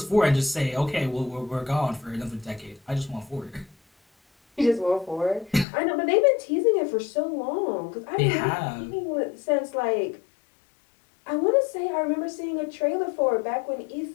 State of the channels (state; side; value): drops out; right; at 5.7 s